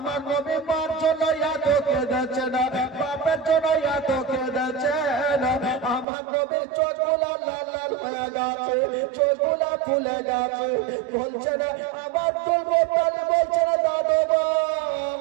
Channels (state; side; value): drops out; left; at 6.1 s